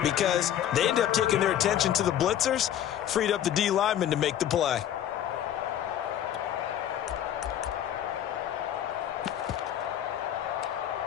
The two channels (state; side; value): quieter; right; 10.9 dB